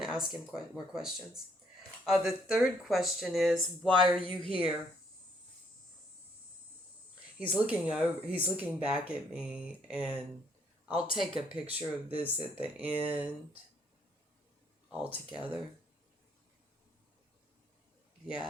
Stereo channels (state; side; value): normal; both; correlation 0.69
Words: to ask him more questions. The third question is, why are you here? He's looking back at me, and I'll take a picture of this at the end all together.